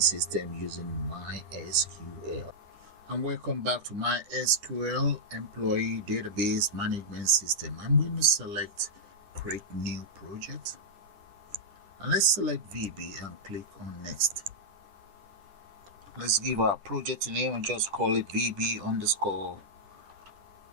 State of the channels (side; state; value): left; late; 10 ms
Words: system using MySql. And welcome back to MySql employee database management system. I'm going to select create new project, and let's select VB and click on next. Let's give our project a name and just call it VB _